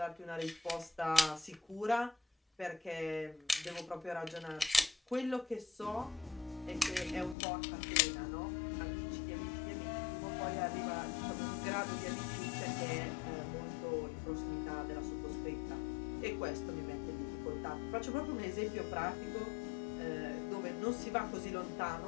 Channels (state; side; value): drops out; right; at 7.4 s